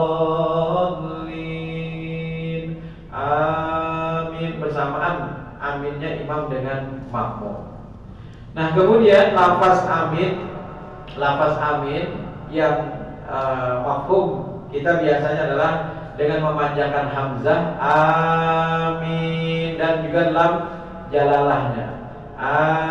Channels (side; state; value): both; identical; correlation 1.00